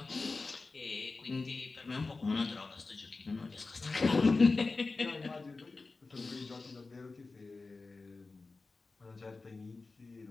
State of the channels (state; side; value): quieter; right; 3.8 dB